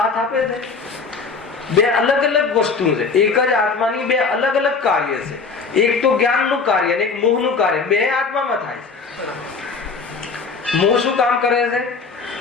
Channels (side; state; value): right; quieter; 4.8 dB